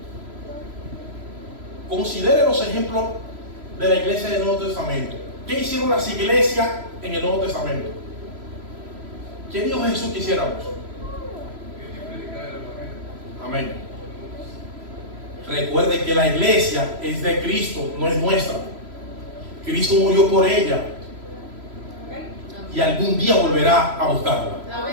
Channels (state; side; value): late; left; 3.0 ms